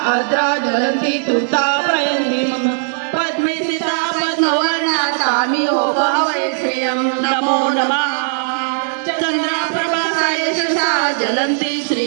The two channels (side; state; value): left; silent; 63 dB below the other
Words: आर्द्रा ज्वलन्ति तुर्तापयन्ति मम पद्मे स्थिता पद्मवर्णा तामिहोपहवे श्रियं नमो नमः। चन्द्रप्रभा यशसा ज्वलन्ति